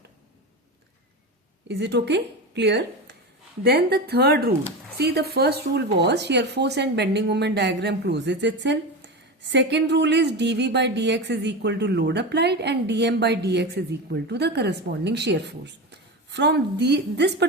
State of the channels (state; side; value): normal; both; correlation 0.22